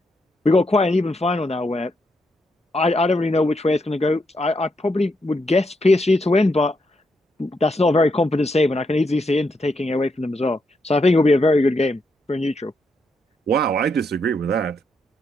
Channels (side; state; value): both; normal; correlation 0.80